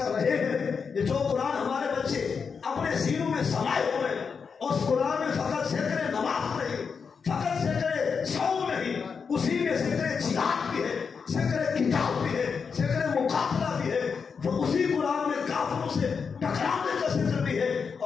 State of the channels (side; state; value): right; quieter; 5.8 dB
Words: رہے ہیں، یہ جو قرآن ہمارے بچے اپنے سینوں میں سمائے ہوئے اس قرآن میں فقط ذکر نماز نہیں، فقط ذکر صوم نہیں، اسی میں ذکر جہاد بھی ہے، ذکر کتاب بھی ہے، ذکر مقابلہ بھی ہے. وہ اسی قرآن میں کافروں سے ٹکرانے کا ذکر بھی ہے